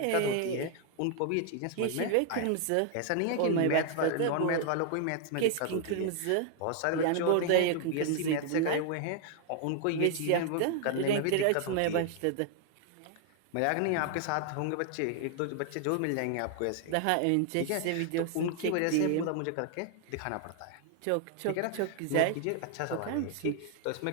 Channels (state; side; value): different; both; correlation 0.00